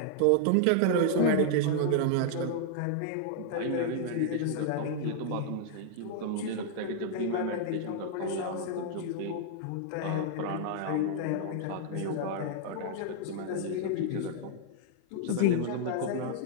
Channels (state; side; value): different; both; correlation -0.01